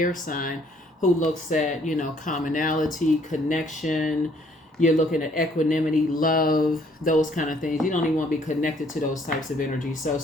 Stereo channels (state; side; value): normal; both; correlation 0.63